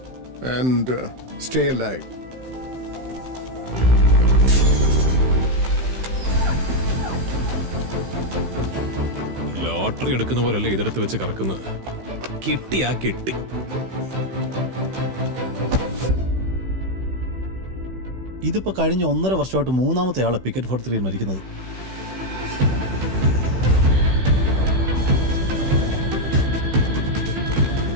and stay alive. Lottery എടുക്കുന്ന പോലല്ലേ ഇതെടുത്ത് വെച്ച് കറക്കുന്നത്. കിട്ടിയാ കിട്ടി. ഇതിപ്പോ കഴിഞ്ഞ 1.5 വർഷമായിട്ട് 3ാമത്തെ ആളെ പിക്കറ്റ് 43 മരിക്കുന്നത്.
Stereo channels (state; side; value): late; left; 16 ms